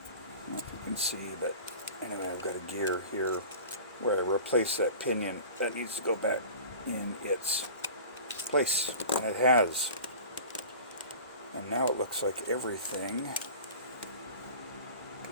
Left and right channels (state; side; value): inverted; both; correlation -0.39